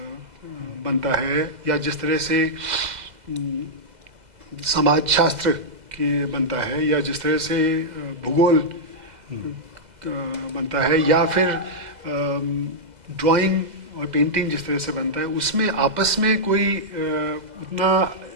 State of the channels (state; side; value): late; left; 2.0 ms